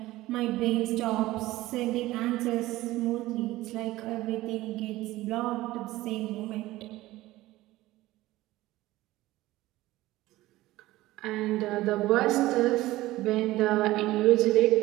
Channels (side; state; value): left; quieter; 17.3 dB